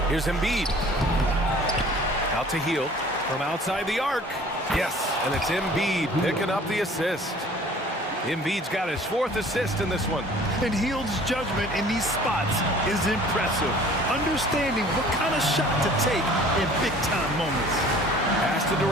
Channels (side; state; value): both; normal; correlation 0.50